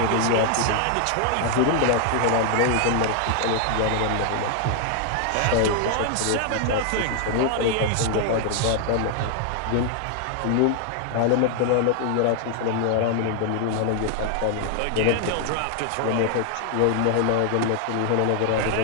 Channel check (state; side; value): different; both; correlation 0.00